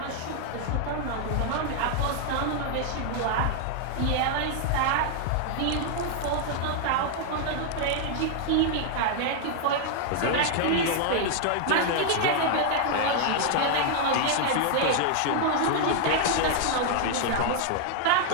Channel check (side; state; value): both; different; correlation 0.00